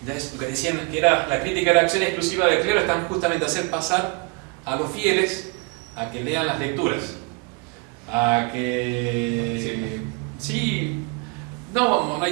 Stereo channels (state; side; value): quieter; left; 29.9 dB